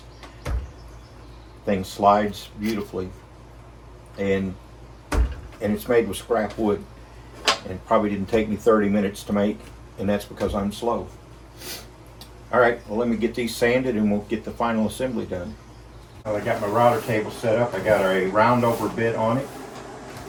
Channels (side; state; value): both; identical; correlation 1.00